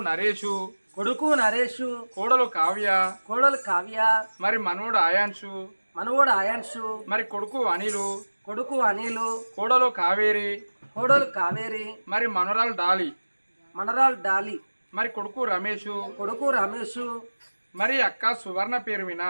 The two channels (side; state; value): both; inverted; correlation -1.00